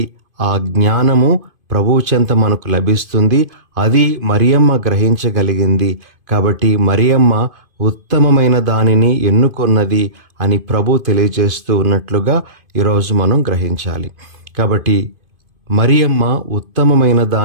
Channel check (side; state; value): left; late; 2.5 ms